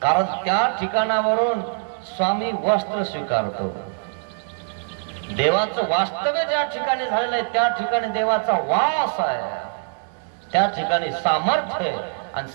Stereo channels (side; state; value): left; silent; digital silence